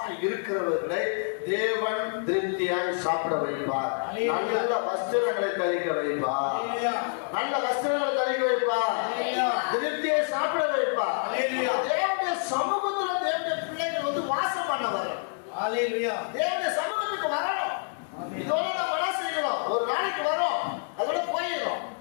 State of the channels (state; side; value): silent; right; 60 dB below the other